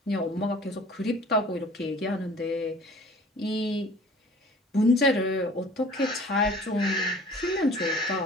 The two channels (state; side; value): normal; both; correlation 0.48